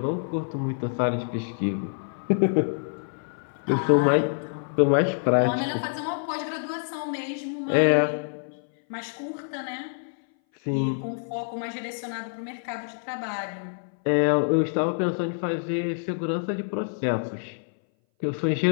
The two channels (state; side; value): silent; right; 59 dB below the other